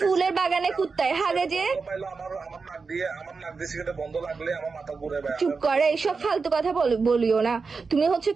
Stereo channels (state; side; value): quieter; left; 4.7 dB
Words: বাগানে কুত্তায় হাগে যে। আমার নাক দিয়ে সিগারেট বন্ধ লাগলে আমার মাথা ঘুরে ভাই। চুপ করে, এইসব ফালতু কথা বলিও না। তুমি হচ্ছে